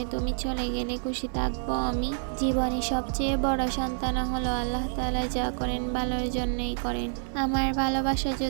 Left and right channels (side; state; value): left; silent; 55 dB below the other